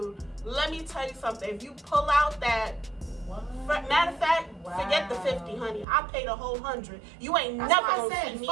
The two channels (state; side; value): drops out; left; at 5.9 s